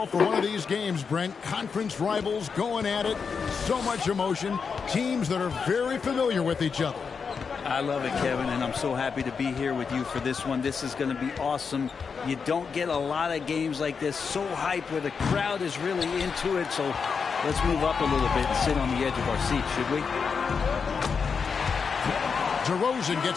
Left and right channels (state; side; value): quieter; right; 5.7 dB